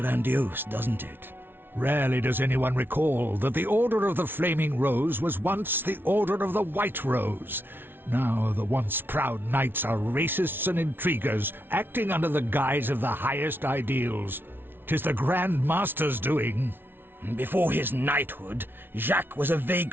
doesn't it? Rarely does anyone recall that the Order of the Flaming Rose was once the Order of the White Rose. Now the once proud knights are racists and intriguers, acting under the guise of the highest ideals. 'Tis the Grand Master's doing. Before his knighthood, Jacques was a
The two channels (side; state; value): left; late; 0.10 ms